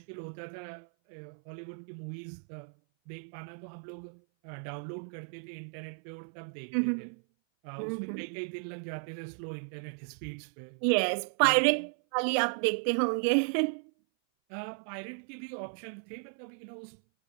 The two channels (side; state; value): left; silent; 55 dB below the other